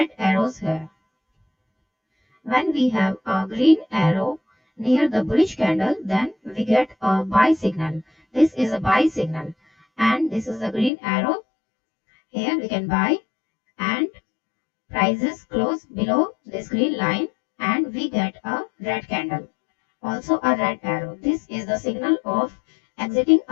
arrows here. When we have a green arrow near the bullish candle, then we get a buy signal. This is a buy signal, and this is a green arrow. Here we can buy, and prices close below this green line, and we get a red candle, also a red arrow. This is the signal of exiting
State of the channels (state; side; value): drops out; right; at 10.9 s